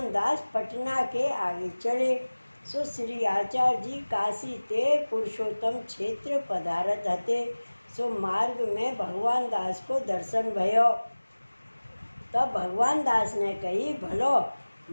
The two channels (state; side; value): inverted; both; correlation -1.00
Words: दास पटना के आगे चले। सो श्री आचार्य जी काशी ते पुरुषोत्तम क्षेत्र पधारत हते। सो मार्ग में भगवान दास को दर्शन भयो। तब भगवान दास ने कही, भलो